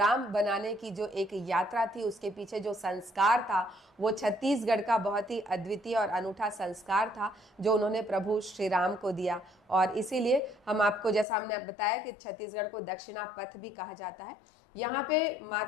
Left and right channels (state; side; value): drops out; right; at 11.2 s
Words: बनाने की जो एक यात्रा थी, उसके पीछे जो संस्कार था वो छत्तीसगढ़ का बहुत ही अद्वितीय और अनूठा संस्कार था जो उन्होंने प्रभु श्री राम को दिया। और इसीलिए हम आपको, जैसा हमने बताया कि छत्तीसगढ़ को दक्षिणापथ भी कहा जाता है। यहाँ पे